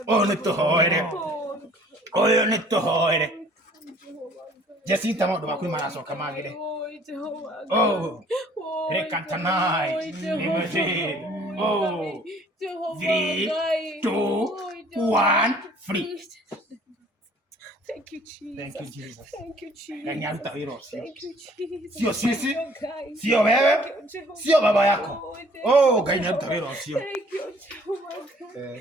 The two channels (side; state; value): both; normal; correlation 0.56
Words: Oyo ne tuhoere. Jesinta modo makui marasoka magire. Oh. Rekantanai. Imagine. Oh. 3, 2, 1, free. Thank you, Jesus. Ganyaruta virosi. Thank you, Jesus. Sio sisi. Sio wewe. Sio baba yako. Oh, ganyaruta virosi. Thank you,